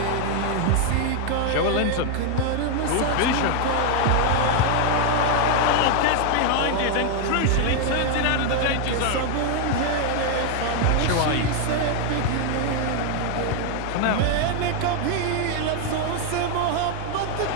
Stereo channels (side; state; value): both; different; correlation 0.01